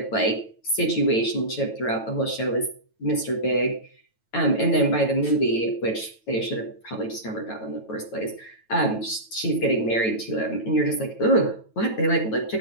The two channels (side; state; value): right; late; 9.1 ms